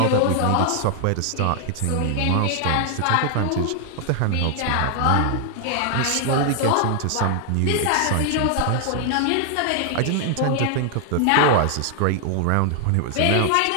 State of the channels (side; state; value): both; different; correlation 0.00